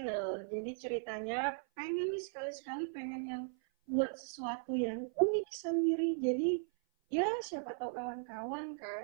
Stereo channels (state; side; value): silent; left; 53 dB below the other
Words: Jadi ceritanya pengen nih sekali-sekali pengen yang buat sesuatu yang unik sendiri. Jadi ya siapa tahu kawan-kawan